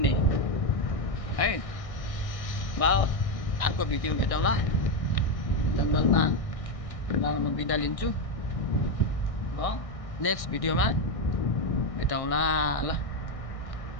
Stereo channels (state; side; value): late; right; 1.6 ms